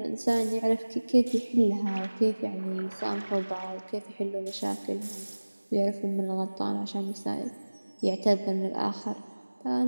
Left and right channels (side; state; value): both; inverted; correlation -1.00